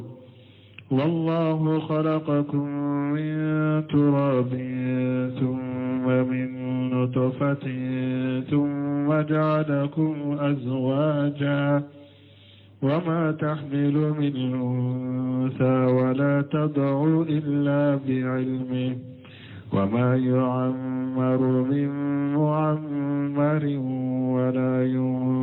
والله خلقكم من تراب ثم من نطفة ثم جعلكم أزواجا وما تحمل من أنثى ولا تضع إلا بعلمه وما يعمر من معمر ولا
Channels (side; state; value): both; identical; correlation 1.00